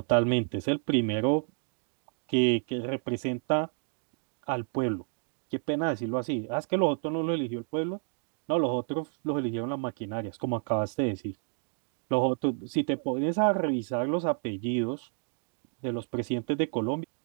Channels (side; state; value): left; silent; 58 dB below the other